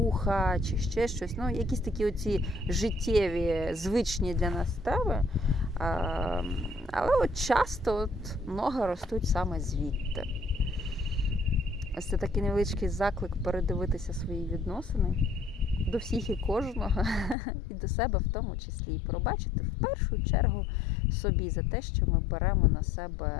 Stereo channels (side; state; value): right; drops out; at 17.4 s